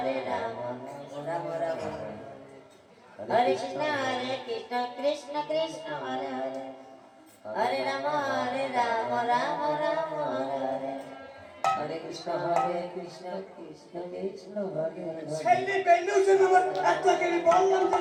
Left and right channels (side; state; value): both; identical; correlation 1.00